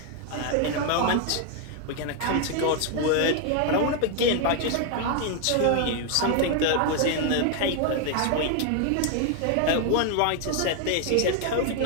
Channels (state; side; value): different; both; correlation 0.01